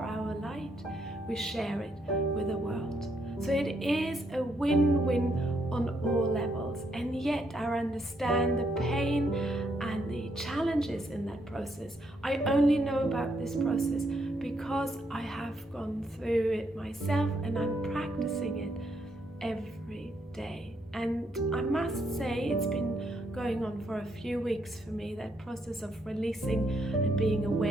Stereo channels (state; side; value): normal; both; correlation 0.75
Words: light, we share it with the world. So it is a win-win on all levels, and yet I understand the pain and the challenges in that process. I only know about this process because I have gone through it myself, and I'm practicing it every day. And I must say it's been going on for a few weeks for me, that process of releasing and being